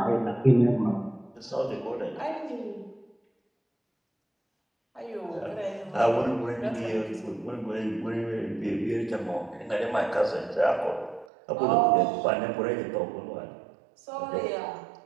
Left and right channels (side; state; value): left; drops out; at 11.2 s